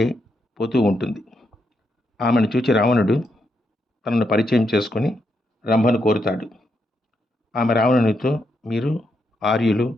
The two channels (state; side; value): normal; both; correlation 0.81